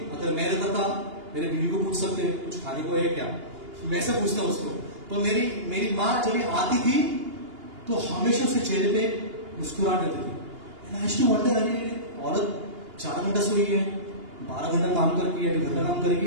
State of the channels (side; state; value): left; late; 2.8 ms